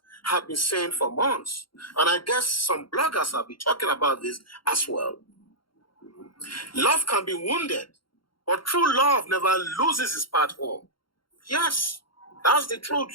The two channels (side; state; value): right; late; 0.73 ms